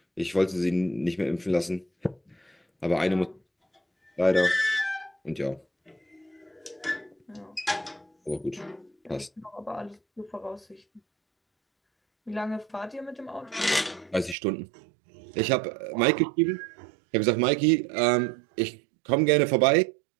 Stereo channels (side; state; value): left; drops out; at 14.4 s